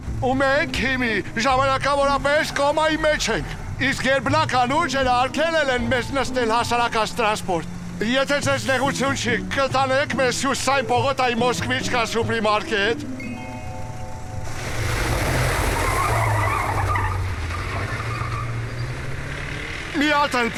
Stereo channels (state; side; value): identical; both; correlation 1.00